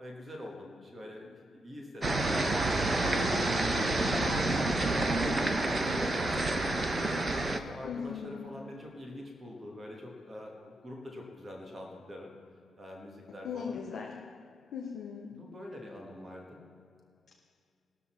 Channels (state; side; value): normal; both; correlation 0.83